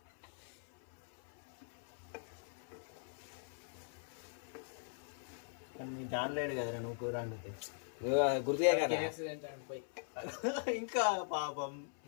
నీ జానలేడు కదరా నువ్వు కూర వండితే. గుర్తుగా కదా ఇంకా పాపం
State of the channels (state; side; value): silent; right; 51 dB below the other